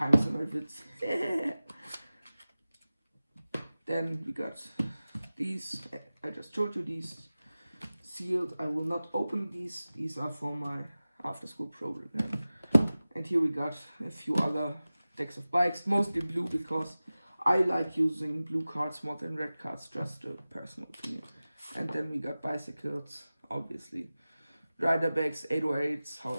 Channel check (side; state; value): both; inverted; correlation -0.97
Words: in my vids. Then we got these. I just showed you these sealed. I will not open these. These are for my after school program. And here we got a few other decks of bikes, mostly blue because I like using blue cards more than red cards, just a personal opinion. And then we got bicycles, obviously. Rider bags, 808s,